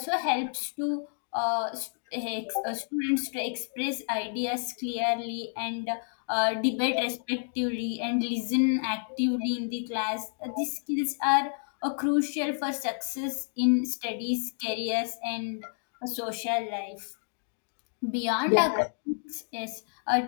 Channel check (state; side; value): silent; right; 58 dB below the other